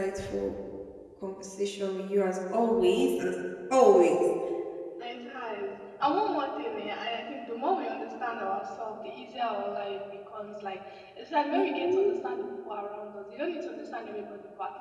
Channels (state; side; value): identical; both; correlation 1.00